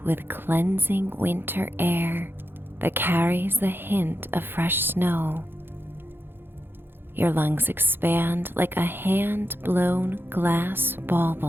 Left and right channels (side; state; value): left; late; 0.10 ms